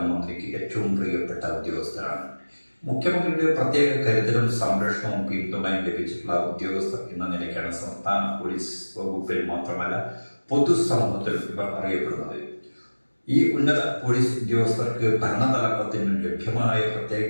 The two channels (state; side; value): inverted; both; correlation -1.00